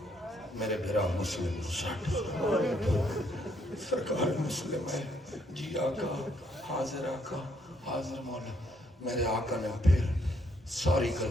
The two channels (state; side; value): normal; both; correlation 0.71